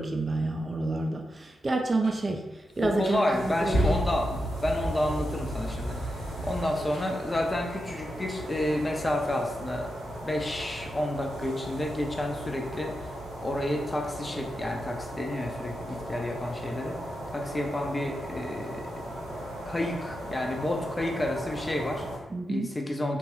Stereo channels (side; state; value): both; normal; correlation 0.88